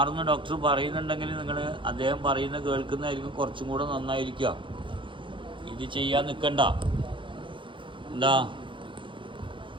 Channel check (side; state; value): left; late; 0.24 ms